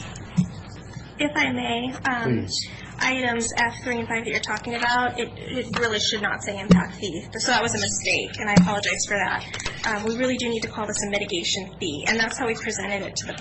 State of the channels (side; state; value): both; identical; correlation 1.00